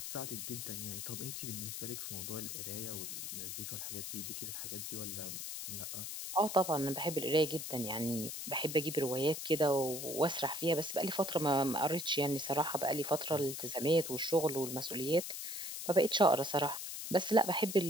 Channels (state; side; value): noise; left; hiss, 6 dB below the sound